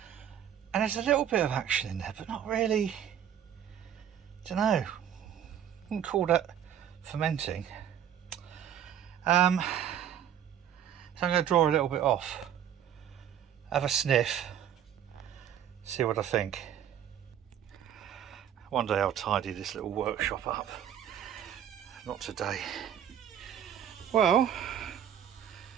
And there's a little bit of action in there, but not really. Don't know. Wouldn't call that fermenting. So I'm going to draw a little bit off, have a sniff, see what I think. One day I'll tidy this little workshop up. Not today. Well,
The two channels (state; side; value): quieter; left; 9.7 dB